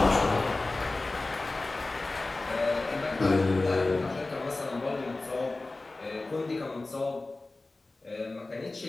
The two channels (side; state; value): right; quieter; 3.2 dB